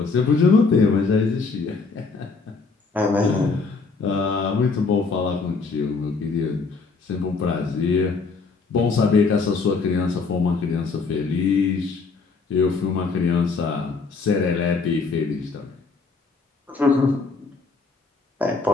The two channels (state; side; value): quieter; right; 4.4 dB